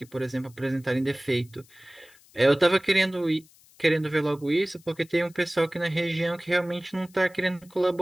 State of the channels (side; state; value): left; noise; hiss, 27 dB below the sound